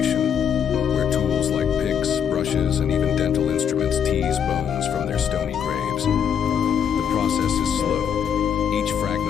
where tools like picks, brushes, and even dental instruments tease bones from their stony graves. The process is slow. Each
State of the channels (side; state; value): right; quieter; 8.2 dB